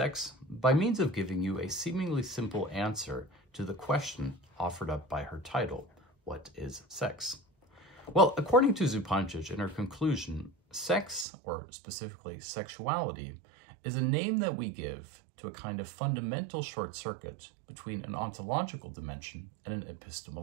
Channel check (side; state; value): left; drops out; at 11.2 s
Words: by means of giving you a seemingly simple answer to the question offered up by her title, What is Sex? Well, according to Zupančič in her conclusion, sex, or specifically sexuality, is a name that we give to a kind of fundamental short circuit between an ontological dimension and an